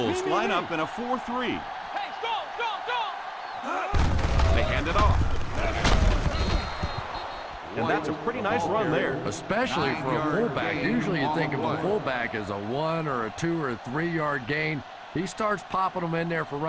line up in a 4-3. Hey, go! They hand it off. And that's a pretty nice run there. Especially for a fullback. Usually you think of a fullback as a 1 or a 2 or a 3 yard gain. He starts popping them in there for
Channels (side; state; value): both; identical; correlation 1.00